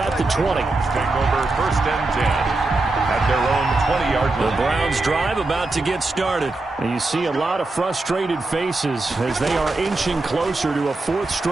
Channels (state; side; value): quieter; left; 3.2 dB